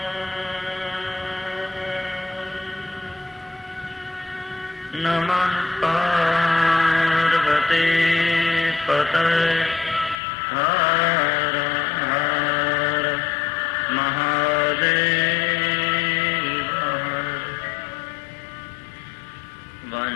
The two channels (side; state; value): right; drops out; at 10.2 s